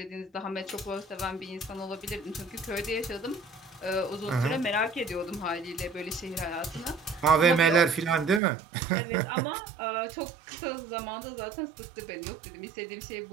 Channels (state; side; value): drops out; left; at 8.4 s